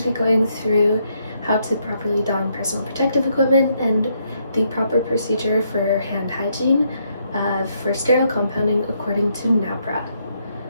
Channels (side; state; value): both; inverted; correlation -0.75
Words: be going through how to properly don personal protective equipment and the proper procedure for hand hygiene for sterile compounding according to NAPRA.